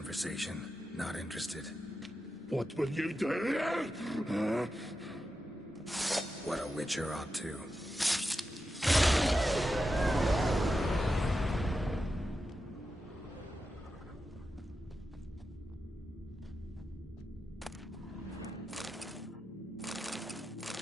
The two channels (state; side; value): normal; both; correlation 0.90